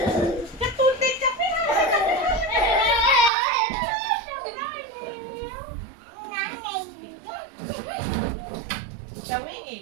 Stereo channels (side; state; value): left; drops out; at 3.3 s